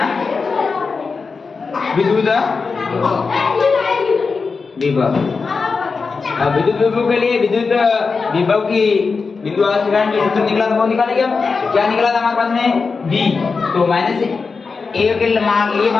विद्युत विभव। अब विद्युत विभव के लिए विद्युत विभव की बिंदु आवेश के कारण जो सूत्र निकला था वो निकालेंगे हम। क्या निकला था हमारे पास में B, तो A के मान लिए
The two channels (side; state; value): right; quieter; 4.7 dB